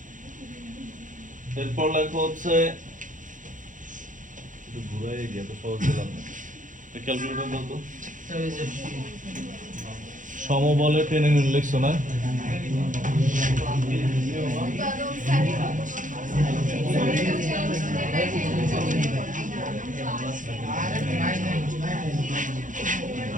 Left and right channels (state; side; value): late; left; 0.37 ms